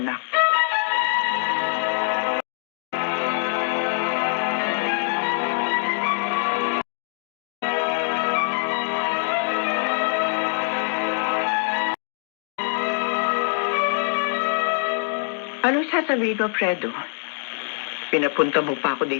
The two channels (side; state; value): right; silent; digital silence